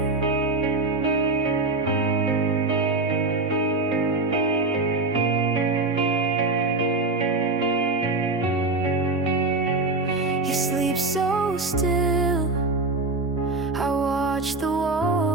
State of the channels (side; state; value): left; quieter; 3.3 dB